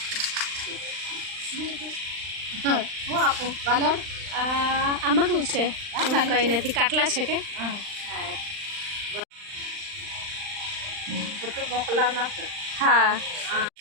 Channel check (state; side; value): late; left; 39 ms